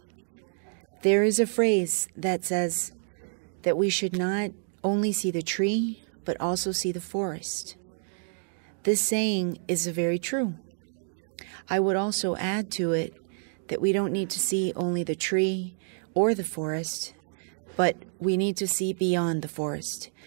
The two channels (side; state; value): left; silent; digital silence